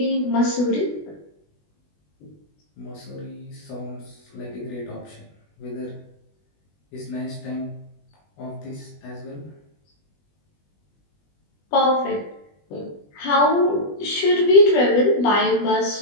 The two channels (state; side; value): late; right; 20 ms